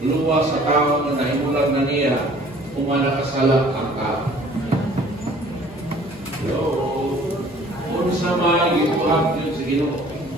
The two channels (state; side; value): noise; left; hum, 21 dB below the sound